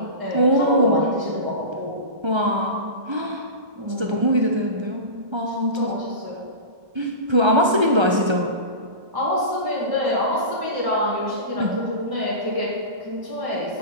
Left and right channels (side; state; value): left; late; 1.3 ms